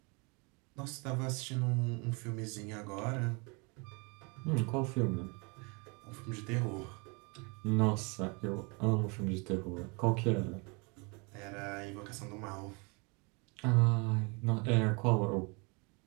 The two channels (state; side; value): quieter; left; 31.1 dB